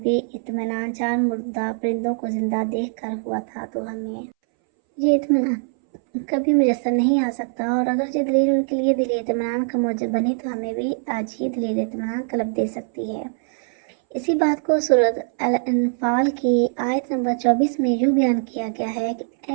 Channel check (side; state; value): left; silent; 63 dB below the other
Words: اطمینان چار مردہ پرندوں کو زندہ دیکھ کر ہوا تھا تو ہمیں یہ اطمینان کبھی میسر نہیں آ سکتا، اور اگر یہ دلیل ان کے لیے دلی اطمینان کا موجب بنی تو ہمیں بھی آج ہی دلیل اطمینان قلب دے سکتی ہے۔ اسی بات کو سورۃ الانفال کی آیت نمبر 24 میں یوں بیان کیا گیا ہے کہ